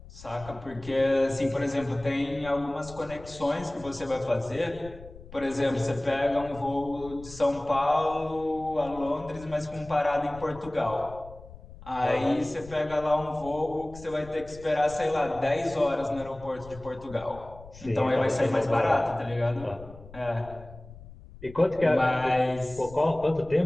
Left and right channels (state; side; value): noise; left; rumble, 18 dB below the sound